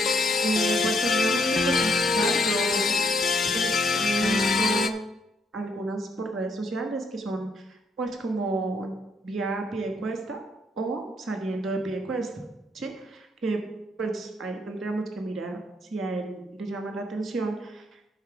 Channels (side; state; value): both; normal; correlation 0.73